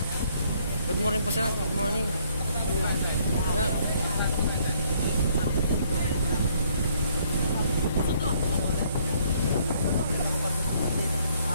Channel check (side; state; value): both; inverted; correlation -0.65